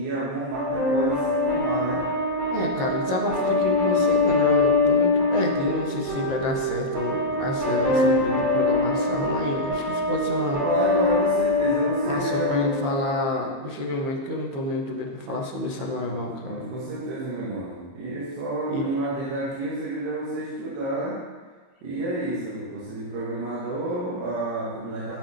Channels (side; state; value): left; late; 22 ms